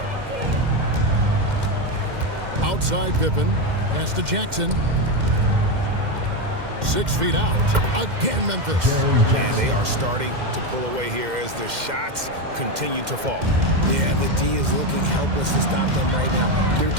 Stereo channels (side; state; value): left; late; 2.1 ms